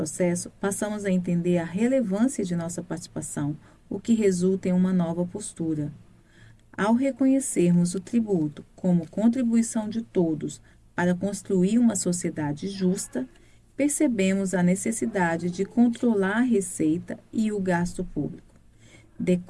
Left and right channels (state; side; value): identical; both; correlation 1.00